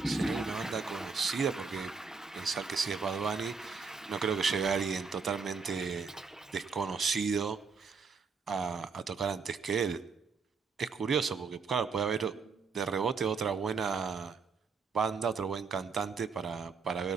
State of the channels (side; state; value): left; quieter; 5.1 dB